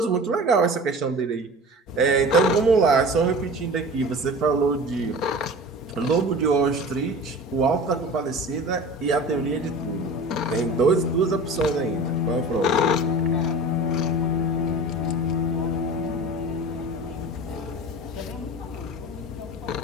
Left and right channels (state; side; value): normal; both; correlation 0.37